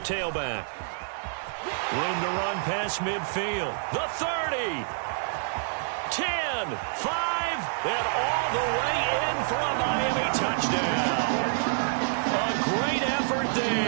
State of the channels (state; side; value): silent; left; 59 dB below the other